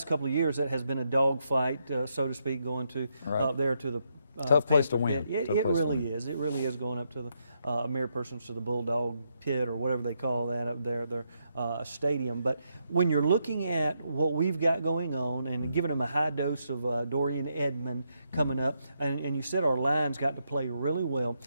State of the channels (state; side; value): inverted; both; correlation -0.79